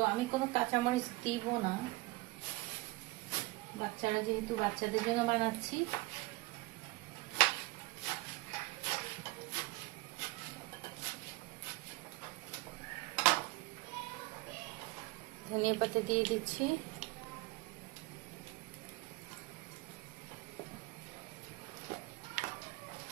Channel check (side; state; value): left; quieter; 22.0 dB